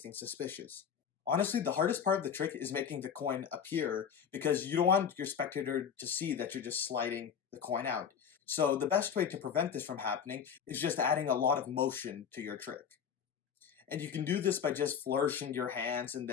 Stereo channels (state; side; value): quieter; right; 7.5 dB